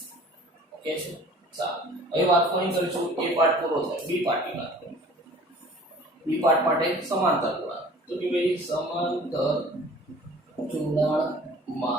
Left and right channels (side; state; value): both; normal; correlation 0.48